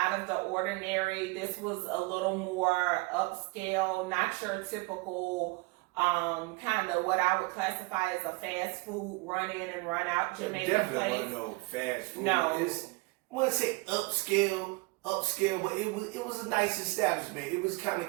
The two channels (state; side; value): quieter; left; 26.4 dB